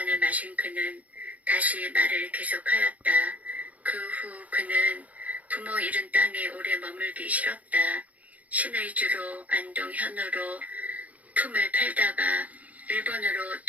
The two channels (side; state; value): left; late; 0.073 ms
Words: 마신 그는 다시 말을 계속하였다. 그 후 그는 부모 잃은 땅에 오래 머물기 싫었다. 신의 주로 안동 현으로 품을 팔다가 일본으로